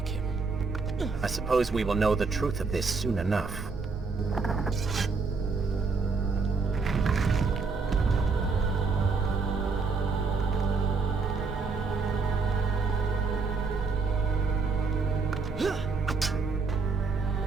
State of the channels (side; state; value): left; quieter; 4.4 dB